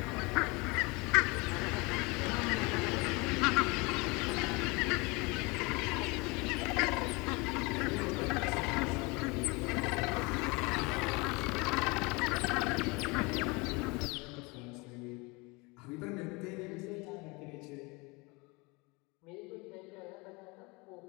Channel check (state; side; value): quieter; right; 26.7 dB